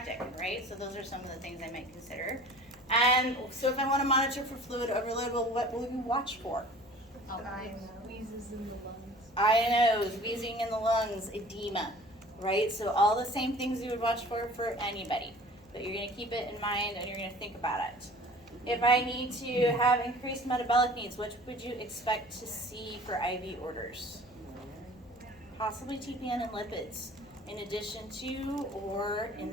right? So those are some of the things I might consider. And so if I want to monitor for fluid overload, well, what will you watch for? Wheezes in the lungs. Eye and nose, wheezing in the lungs, edema, right? So all the same things you would watch for anybody. But you're going to keep it in mind and you're going to think about it. If I need to have increased metabolic needs, which would you expect to see for IV orders? Possibly TPN and lipids, in addition to or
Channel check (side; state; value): left; noise; hum, 28 dB below the sound